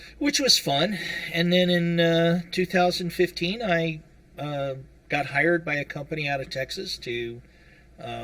Which was fun. And then in 2015, I got hired by a company out of Texas to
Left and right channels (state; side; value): identical; both; correlation 1.00